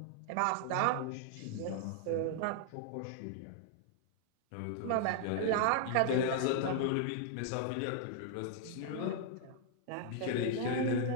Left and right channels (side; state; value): both; different; correlation 0.00